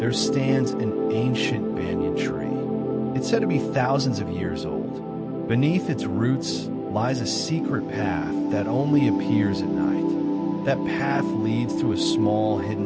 stands an ancient banyan tree. It's said to be thousands of years old. Beneath its roots lies a secret path that only appears at night. That path leads to a small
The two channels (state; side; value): identical; both; correlation 1.00